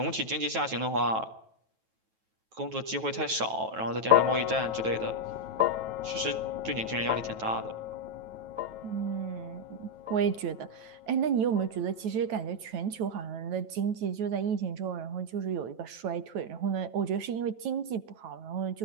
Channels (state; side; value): late; left; 9.2 ms